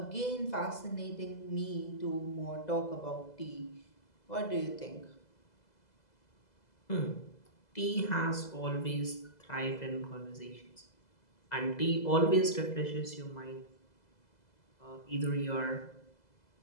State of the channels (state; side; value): late; right; 2.0 ms